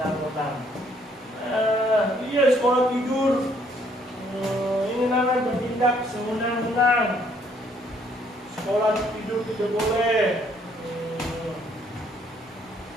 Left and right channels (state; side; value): normal; both; correlation 0.66